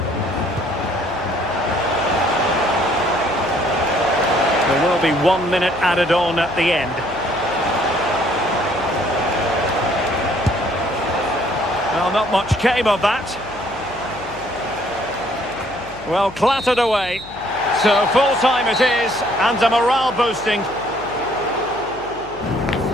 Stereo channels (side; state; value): left; noise; hum, 19 dB below the sound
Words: There will be 1 minute added on at the end. Well, not much came of that. Well, clattered away. So full time it is, and a morale boosting.